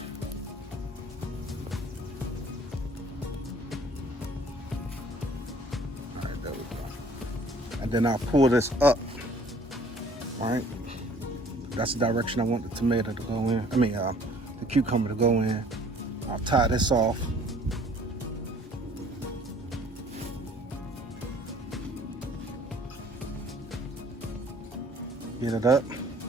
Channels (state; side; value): normal; both; correlation 0.55